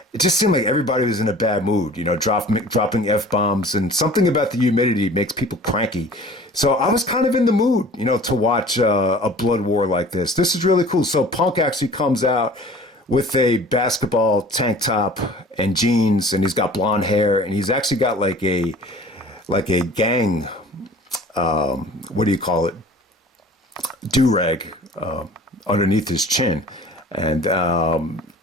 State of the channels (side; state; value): both; normal; correlation 0.46